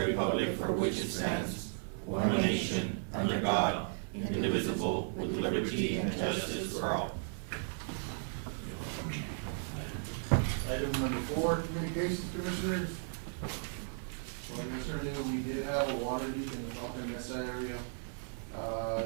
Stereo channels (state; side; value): silent; left; 54 dB below the other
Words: republic for which it stands, one nation, under God, indivisible, with liberty and justice for all. Item number 4, communications commissioners. So yesterday we did have a water leak in the Falcon Mesa area.